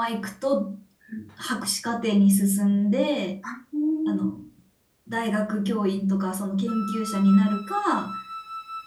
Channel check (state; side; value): identical; both; correlation 1.00